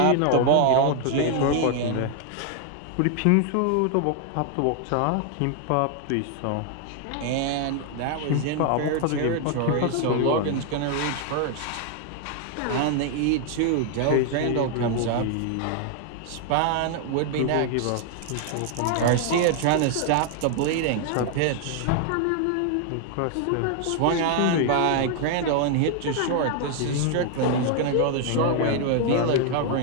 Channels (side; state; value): both; different; correlation 0.00